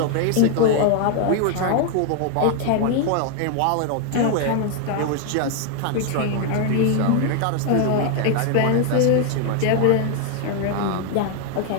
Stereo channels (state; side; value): different; both; correlation 0.00